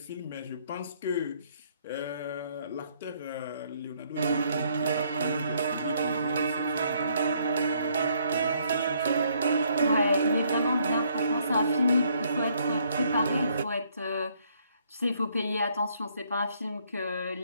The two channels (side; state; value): both; inverted; correlation -0.68